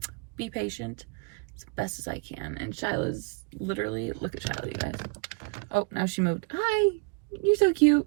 be patient as best as I can. And Shyla's literally, look at Shyla, you guys. Oh, now she moved. Hi, you're so cute.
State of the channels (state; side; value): quieter; left; 32.1 dB